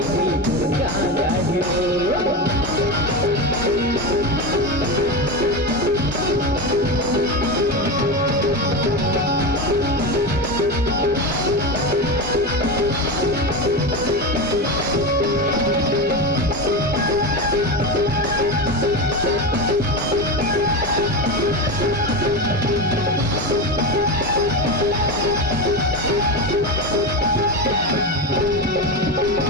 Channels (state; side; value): normal; both; correlation 0.19